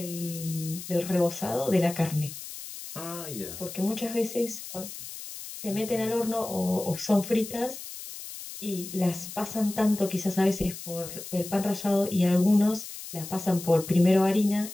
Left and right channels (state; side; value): noise; left; hiss, 11 dB below the sound